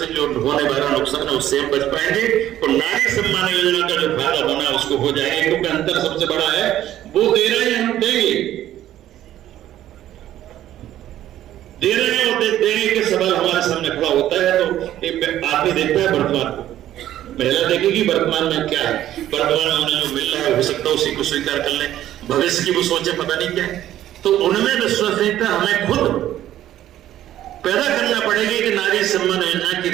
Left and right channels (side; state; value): left; quieter; 12.6 dB